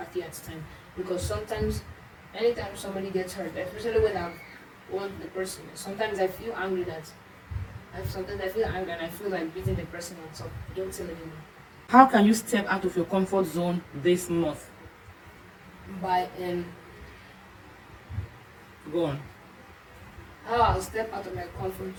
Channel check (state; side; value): identical; both; correlation 1.00